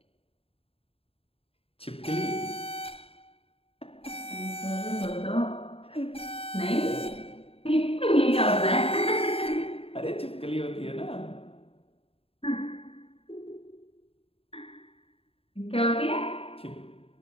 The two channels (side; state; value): right; late; 0.27 ms